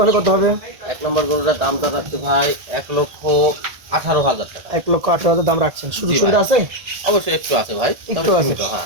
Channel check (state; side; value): late; left; 1.4 ms